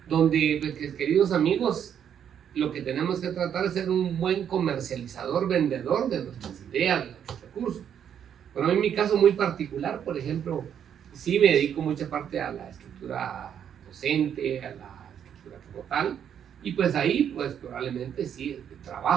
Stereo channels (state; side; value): quieter; left; 8.8 dB